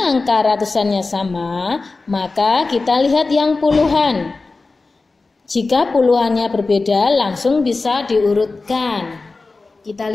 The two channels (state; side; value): quieter; right; 3.7 dB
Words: angka ratusannya sama, maka kita lihat yang puluhan. Jika puluhannya berbeda, langsung bisa diurutkan. Kita